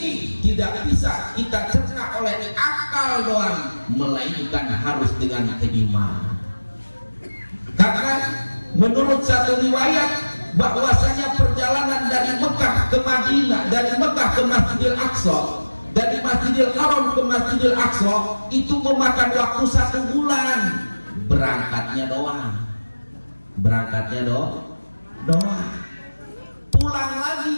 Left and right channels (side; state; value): both; inverted; correlation -1.00